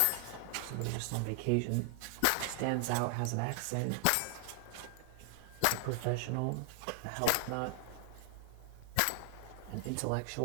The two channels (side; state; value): both; different; correlation 0.00